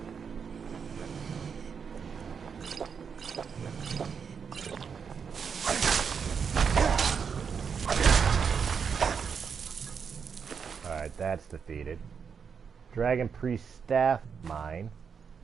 Alright, that's defeated. Dragon Priest Staff, mine.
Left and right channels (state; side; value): quieter; left; 6.4 dB